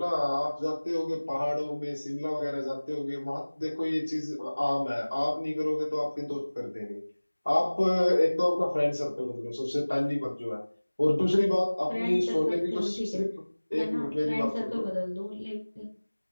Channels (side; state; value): both; inverted; correlation -1.00